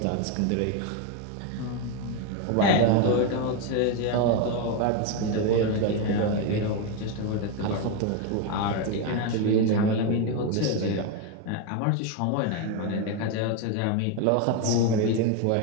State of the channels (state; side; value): different; both; correlation 0.02